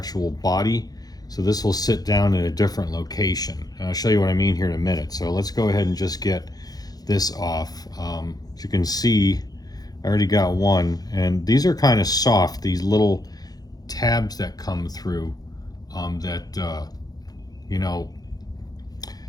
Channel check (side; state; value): right; late; 0.19 ms